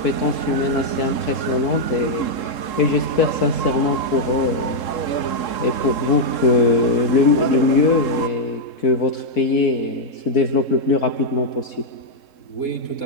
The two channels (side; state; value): right; late; 3.7 ms